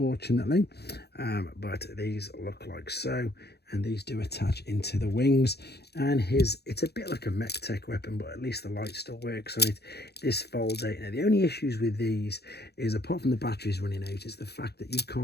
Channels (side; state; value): right; late; 0.48 ms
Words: but these look like so. And these do attach into the wings, and it's a bit like a mech tech weapon, but at least the light still works on it. This folds out. Now, the only issues with these is, apart from the batteries running out, is the fact that you